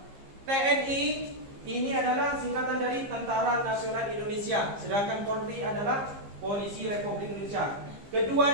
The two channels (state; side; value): late; left; 15 ms